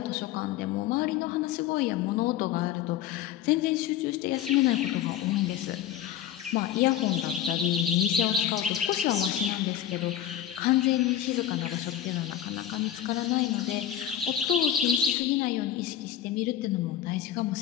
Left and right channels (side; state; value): right; quieter; 11.0 dB